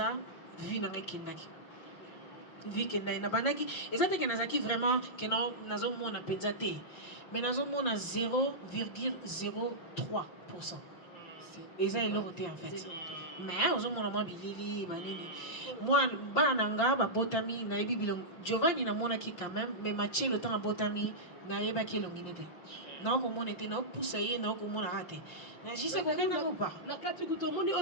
vie na ngai kindaki. Vie kendai na bandaki ezate ke nazaki vraiment ke na nazo mona penza te. Mais nazo mona 0,03%. Et ça, il l'a voté en fait. Mais on a mon bilili, moi, bananga, botami, naibi bilong. Giovanni na mona qui quand même, mais matché le temps à botami, naïba qui l'onginete. Non, comme on était, non, poussaillé, non, comme on a raté. J'y sais qu'on n'a pas. La carte que tout le monde est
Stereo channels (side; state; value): right; late; 5.7 ms